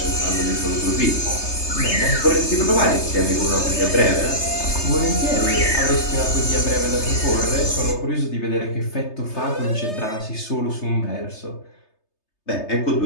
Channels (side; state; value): right; late; 3.3 ms